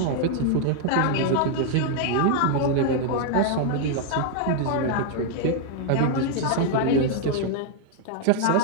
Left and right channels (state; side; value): different; both; correlation 0.00